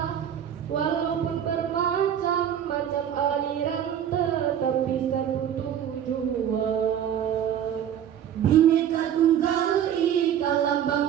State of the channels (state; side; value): quieter; left; 9.6 dB